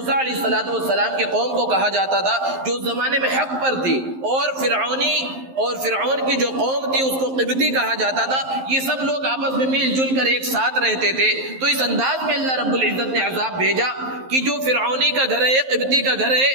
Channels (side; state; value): left; late; 11 ms